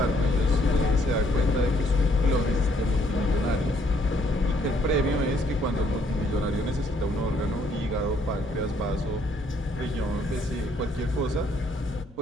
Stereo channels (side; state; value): both; normal; correlation 0.68